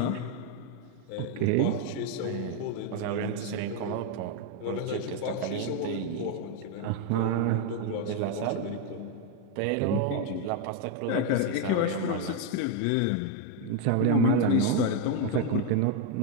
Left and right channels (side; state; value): both; different; correlation 0.01